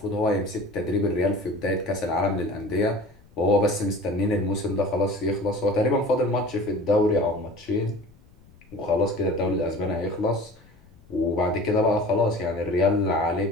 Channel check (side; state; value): left; noise; rumble, 27 dB below the sound